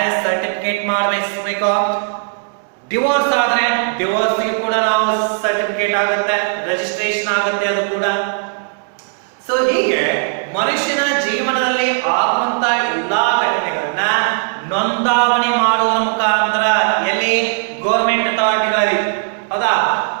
ಮಾಡಿಸಬೇಕು. ಡಿವೋರ್ಸ್ ಆದ್ರೆ ಡಿವೋರ್ಸ್ ಕೂಡ ನಾವು ಸರ್ಟಿಫಿಕೇಟ್ ಆಗುತ್ತೆ, ರಿಜಿಸ್ಟ್ರೇಷನ್ ಆಗುತ್ತೆ ಅದು ಕೂಡ. ಸೊ ಹೀಗೆ ಮನುಷ್ಯನ ಜೀವನದಲ್ಲಿ ಆಗುವಂತ ಎಲ್ಲಾ ಘಟನೆಗಳನ್ನ ನೋಂದಾವಣಿ ಮಾಡುವುದರ ಮುಖಾಂತರ ಎಲ್ಲಿ ಗೌರ್ಮೆಂಟ್ ಅಥಾರಿಟಿಗಳಲ್ಲಿ, ಹೌದಾ,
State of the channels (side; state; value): left; silent; 60 dB below the other